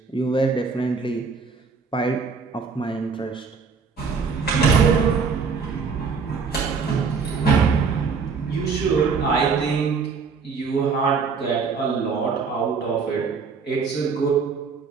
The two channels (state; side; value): quieter; left; 5.3 dB